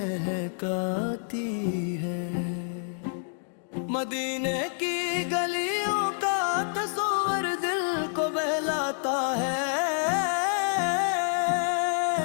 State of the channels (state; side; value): silent; right; digital silence